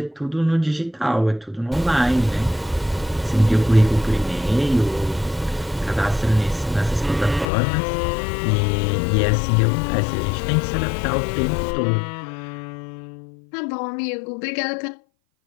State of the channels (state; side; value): drops out; right; at 7.5 s